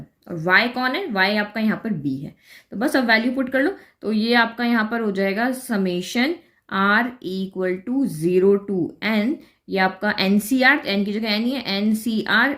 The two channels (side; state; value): both; identical; correlation 1.00